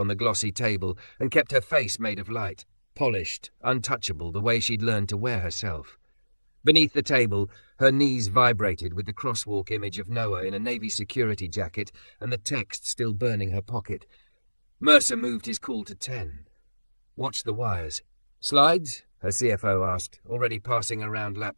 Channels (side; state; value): both; inverted; correlation -1.00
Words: the glossy table and kept her face made of light, polished, untouchable the way she'd learned to wear herself. Beneath the table, her knees vibrated with the crosswalk image of Noah in a Navy security jacket and the text still burning her pocket. Mercer moved his call to 10. Watch the wires. "Slides?" her CFO asked, already passing around